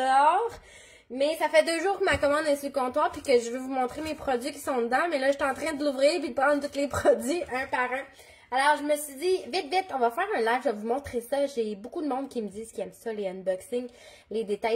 Mais ça fait 2 jours que ma commande est sur le comptoir puis que je veux vous montrer mes produits qui sont dedans. Mais là, je suis en train de l'ouvrir puis de prendre tous les produits un par un. Alors, je me suis dit, vite, on va faire un live, je vais vous montrer ça. J'ai beaucoup de monde qui me disent qu'ils aiment ça, les unboxings, les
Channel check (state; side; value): identical; both; correlation 1.00